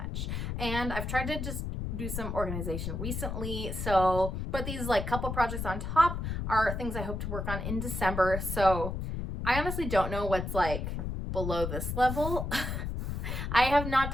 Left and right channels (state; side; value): noise; left; rumble, 4 dB below the sound